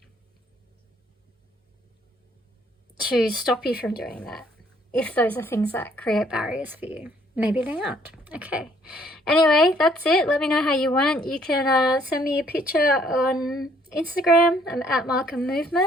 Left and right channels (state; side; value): normal; both; correlation 0.64